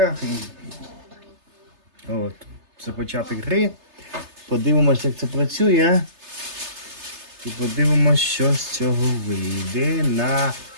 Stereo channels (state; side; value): late; left; 3.3 ms